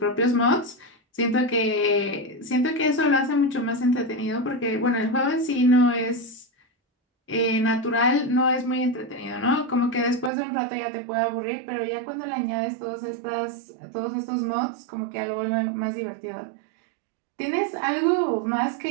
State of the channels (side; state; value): left; drops out; at 10.3 s